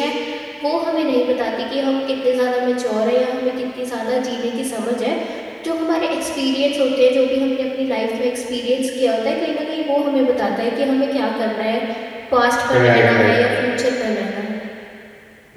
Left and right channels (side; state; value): both; identical; correlation 1.00